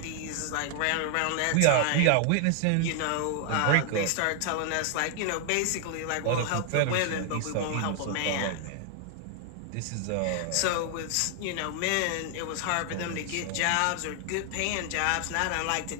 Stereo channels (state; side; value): different; both; correlation 0.00